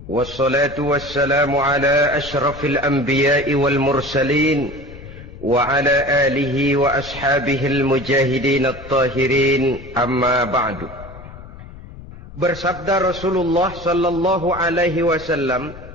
Wassalatu wassalamu ala ashrafil anbiya'i wal mursalin wa ala alihi wa ashabihil mujahidin at-tahirin, amma ba'du. Bersabda Rasulullah sallallahu alaihi wasallam,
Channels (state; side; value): noise; left; rumble, 16 dB below the sound